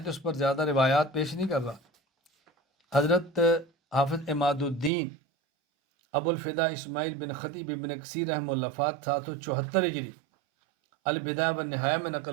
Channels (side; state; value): left; drops out; at 4.9 s